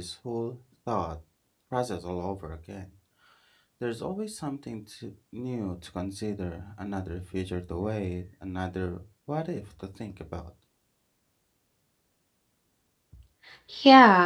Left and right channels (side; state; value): both; identical; correlation 1.00